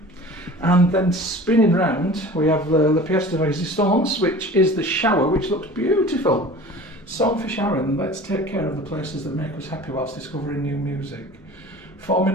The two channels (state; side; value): normal; both; correlation 0.41